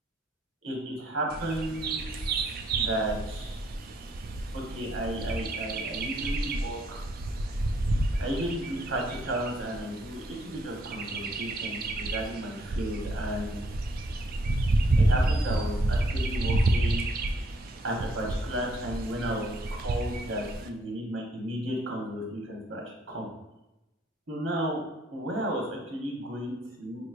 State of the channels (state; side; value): normal; both; correlation 0.68